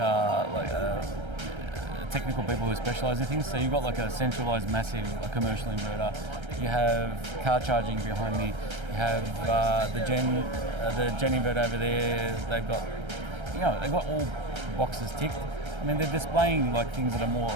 technical people who specialise in things. So you've got like a centralised, massive commercial inverter. You have car charging behind me. You have the Gen inverter over there. They've got all boxes ticked. I mean, they're displaying like things that are more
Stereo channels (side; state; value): left; late; 1.3 ms